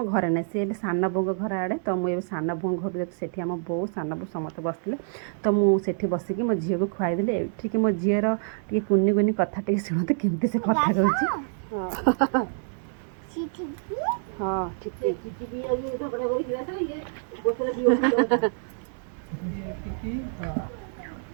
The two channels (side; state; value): left; silent; digital silence